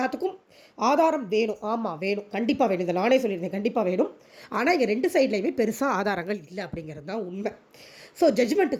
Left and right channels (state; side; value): identical; both; correlation 1.00